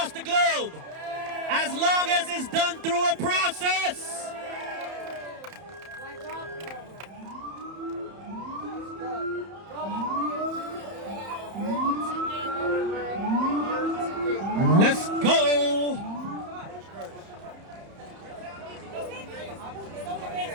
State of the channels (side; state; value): left; late; 31 ms